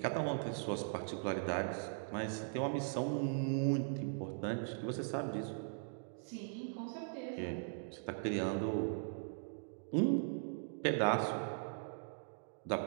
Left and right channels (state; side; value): silent; left; digital silence